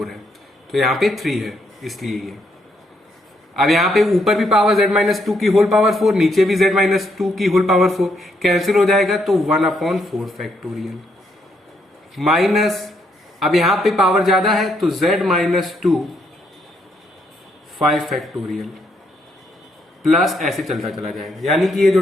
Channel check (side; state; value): both; normal; correlation 0.74